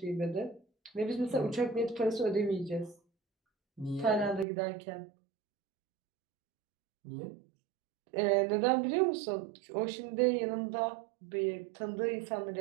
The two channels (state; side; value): drops out; left; at 4.5 s